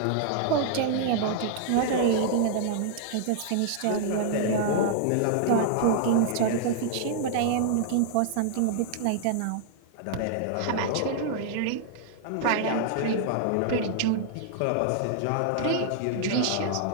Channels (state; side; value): different; both; correlation -0.01